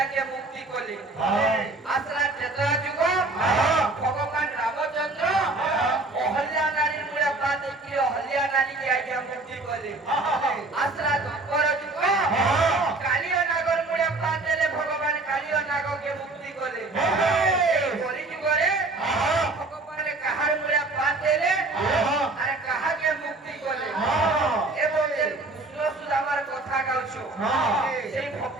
মুক্তি কলি আসলা ত্রেতা যুগ ভগবান রামচন্দ্র অহল্যা নারীর মুড়ে পাত দেইকিরি অহল্যা নারীকে আজ্ঞা মুক্তি কলি আসলা দ্বাপর যুগ কালিয় নাগর মুড়ে পাত দেলে ভগবান কালিয় নাগকে মুক্তি কলি বলি যুগরে ভগবান কাহার মুড়ে পাত দেলে আর কাহাকে মুক্তি কলে এবং কৃষ্ণ সুদামার কথা গাউছো সেই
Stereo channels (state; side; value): quieter; left; 3.1 dB